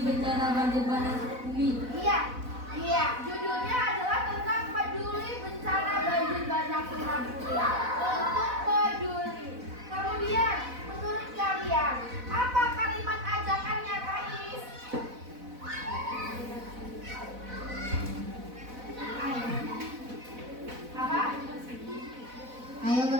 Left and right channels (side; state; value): left; late; 4.0 ms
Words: bencana banjir bandang Sukabumi. Iya, judulnya adalah tentang peduli bencana banjir bandang Sukabumi. Untuk peduli. Kemudian, menurut kalian, apa kalimat ajakannya, Kais? Apa? Ayo